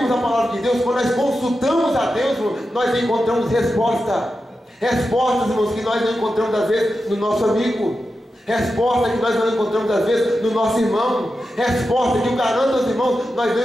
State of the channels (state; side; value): normal; both; correlation 0.90